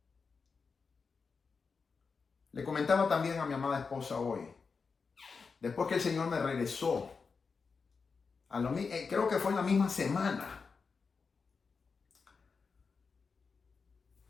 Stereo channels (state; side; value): quieter; right; 5.0 dB